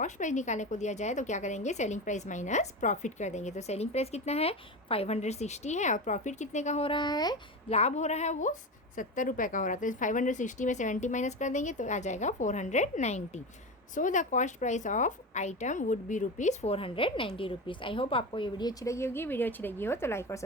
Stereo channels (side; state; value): both; normal; correlation 0.23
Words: price निकालने को दिया जाए तो क्या करेंगे, selling price minus profit कर देंगे। तो सेलिंग प्राइस कितना है, 560 है, और प्रॉफिट कितने का हो रहा है, लाभ हो रहा है वो 70 रुपये का हो रहा है। तो 560 में 70 माइनस कर देंगे तो आ जाएगा 490। So the cost price of item would be ₹490। I hope आपको ये वीडियो अच्छी लगी होगी। वीडियो अच्छी लगी हो तो लाइक और